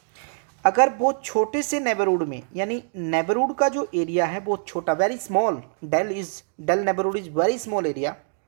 अगर बहुत छोटे से नेबरहुड में, यानी नेबरहुड का जो एरिया है बहुत छोटा, very small, del neighbourhood is very small area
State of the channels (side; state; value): left; silent; digital silence